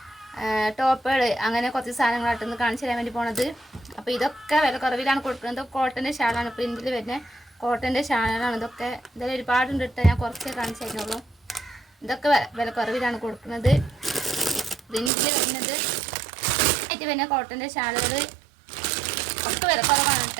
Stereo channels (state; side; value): drops out; left; at 15.1 s